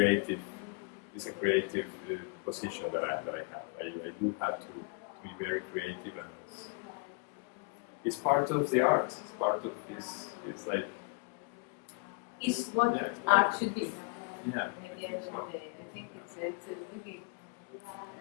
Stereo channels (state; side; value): quieter; right; 33.2 dB